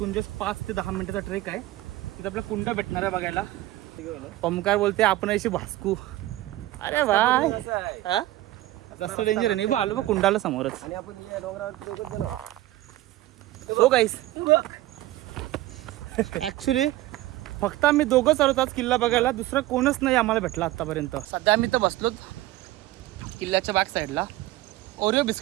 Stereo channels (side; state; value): left; quieter; 16.4 dB